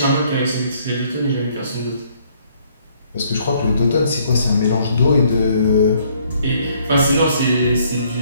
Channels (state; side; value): inverted; both; correlation -0.65